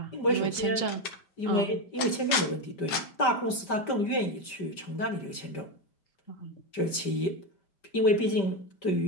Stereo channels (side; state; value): right; late; 5.1 ms